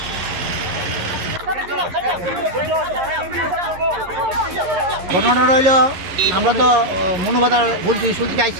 ঘটনাটা রইল, আমরা তো মনোবাদার বলছি স্কুল থেকে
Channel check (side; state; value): left; late; 11 ms